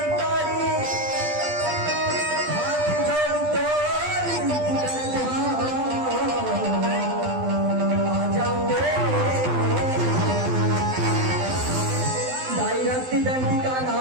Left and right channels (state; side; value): late; left; 12 ms